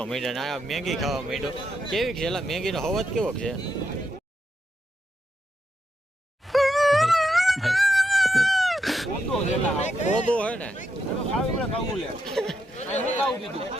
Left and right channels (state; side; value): normal; both; correlation 0.83